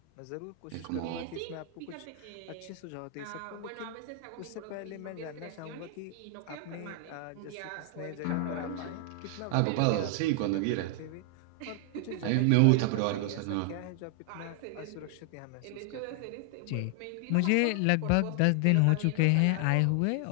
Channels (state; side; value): different; both; correlation 0.00